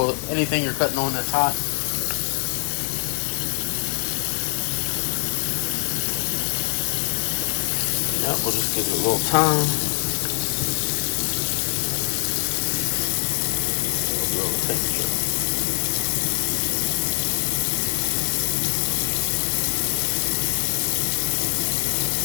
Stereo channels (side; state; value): right; silent; digital silence